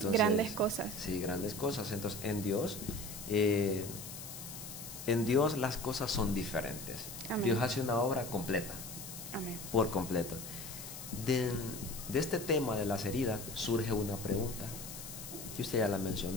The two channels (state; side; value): noise; left; hiss, 10 dB below the sound